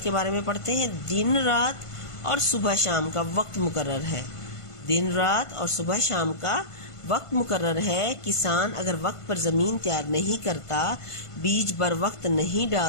کے بارے میں پڑھتے ہیں۔ دن رات اور صبح شام کا وقت مقرر ہے۔ دن رات اور صبح شام کا وقت مقرر ہے۔ کسان اگر وقت پر زمین تیار نہیں کرتا، بیج بر وقت نہیں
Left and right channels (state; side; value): late; right; 1.5 ms